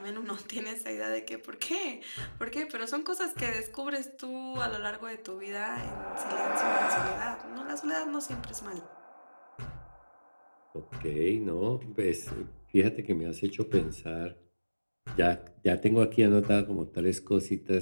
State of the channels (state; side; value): inverted; both; correlation -1.00